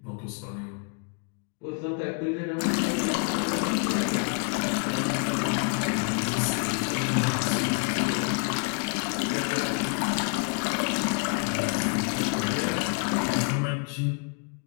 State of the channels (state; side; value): quieter; right; 37.7 dB